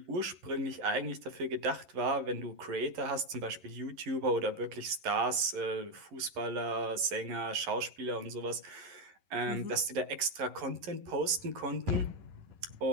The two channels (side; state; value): left; late; 11 ms